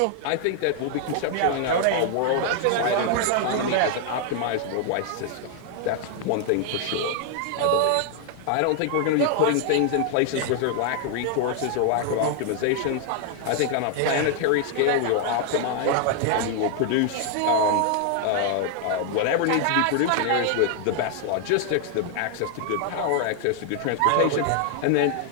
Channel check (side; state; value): both; different; correlation 0.00